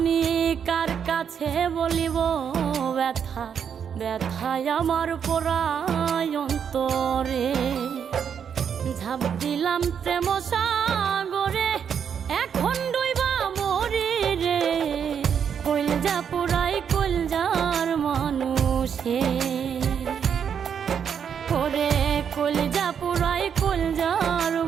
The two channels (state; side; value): quieter; left; 7.7 dB